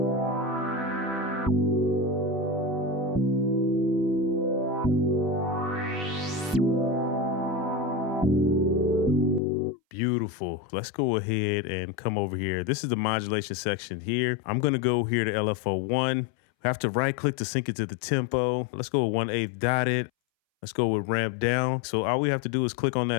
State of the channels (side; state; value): right; drops out; at 9.4 s